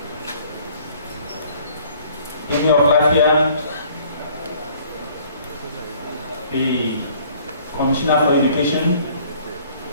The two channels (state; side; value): inverted; both; correlation -0.57